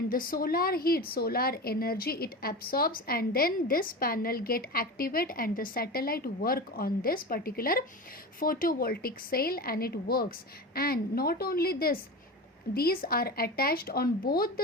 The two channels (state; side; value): normal; both; correlation 0.27